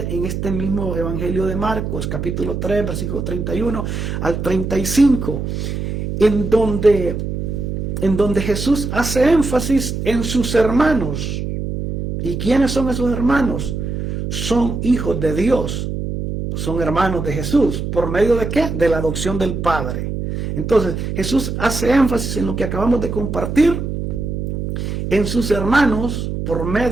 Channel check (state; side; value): noise; right; hum, 4 dB below the sound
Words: en este mismo Evangelio de Marcos, capítulo 3, versículo 31 al 35, en donde Jesús hace énfasis en sus hermanos. ¿Y quiénes son esos hermanos? Son hijos de Dios, son hermanos de Jesús. ¿Por medio de qué? De la adopción del Padre. Entonces, Jesús hace énfasis en lo que acabamos de compartir, en sus hermanos, por